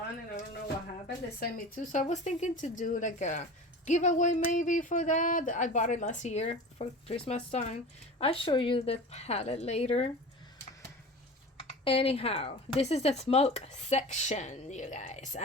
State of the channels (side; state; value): both; normal; correlation 0.35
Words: and I don't know what happened. They sent me two, so I was thinking to do like a giveaway maybe for that. I bought it last year for Christmas time. I'll show you the palette later. Anyhow, this is the smoke section, you guys.